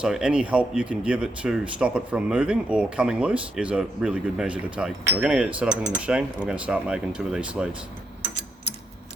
any help you can give it to stop it from moving or coming loose is a really good measure to take. So we're going to get it set up in the machine and we're going to start making 2 of these sleeves.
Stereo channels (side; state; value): both; normal; correlation 0.80